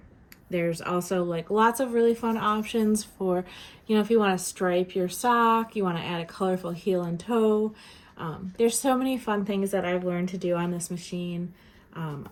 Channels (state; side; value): identical; both; correlation 1.00